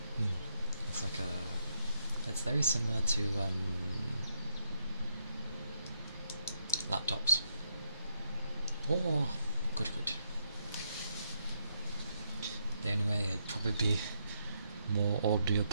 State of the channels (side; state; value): both; inverted; correlation -0.78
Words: It's like it's very similar to laptops. Oh, good. The only way it'd probably be more